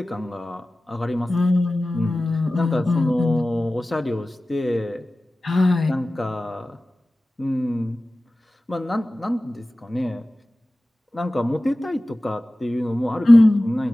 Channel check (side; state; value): both; normal; correlation 0.96